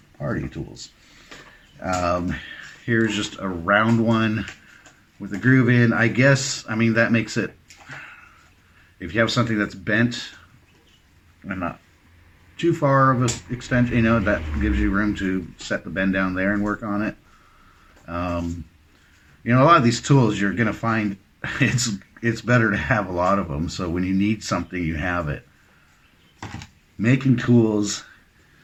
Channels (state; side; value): identical; both; correlation 1.00